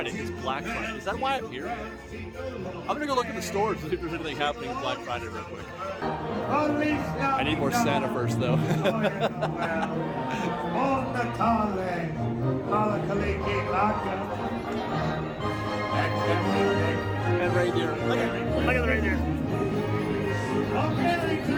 It's Black Friday. Is that why I'm here? I'm going to go look at the stores to see if there's anything happening on Black Friday real quick. I need more Santa first, though. And reindeer. Look at the reindeer. Merry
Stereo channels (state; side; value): identical; both; correlation 1.00